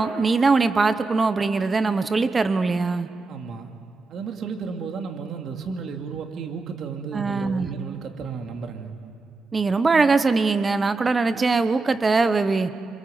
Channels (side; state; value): left; quieter; 3.7 dB